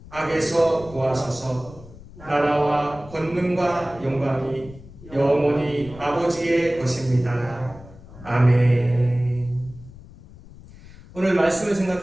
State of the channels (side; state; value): left; noise; rumble, 19 dB below the sound